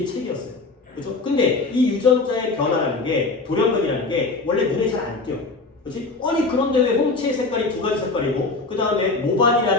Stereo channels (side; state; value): right; quieter; 3.7 dB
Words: 책이었어요. 그렇죠? 근데 이 유전자의 변화라는 게 돌연변이라는 게 원래 눈에 잘 안 띄어. 그렇지? 아니 그런데 왜 홍채의 색깔이 두 가지 색깔이고 그 다음에